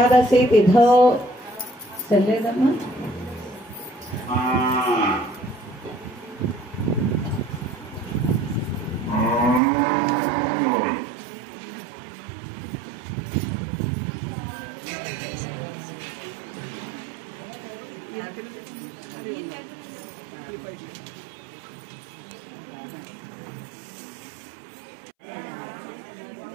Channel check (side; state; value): left; drops out; at 9.6 s